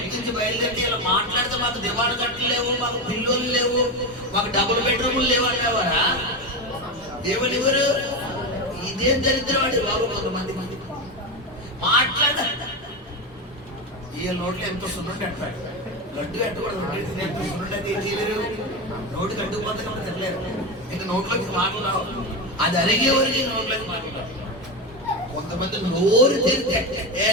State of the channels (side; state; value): both; normal; correlation 0.17